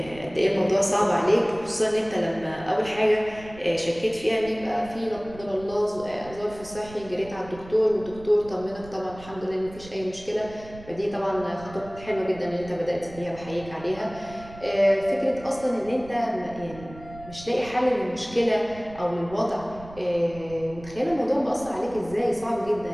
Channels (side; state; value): right; noise; rumble, 18 dB below the sound